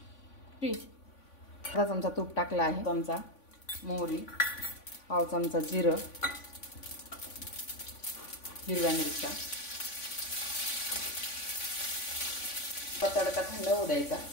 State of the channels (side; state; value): right; late; 3.5 ms